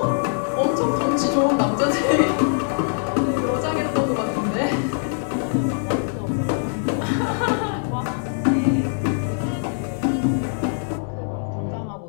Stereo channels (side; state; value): right; silent; 64 dB below the other